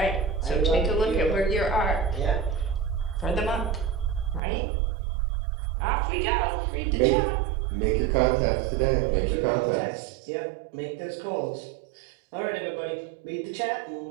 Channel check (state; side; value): drops out; left; at 4.4 s